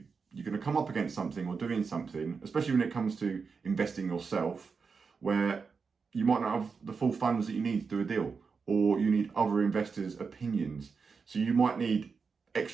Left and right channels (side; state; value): left; quieter; 5.2 dB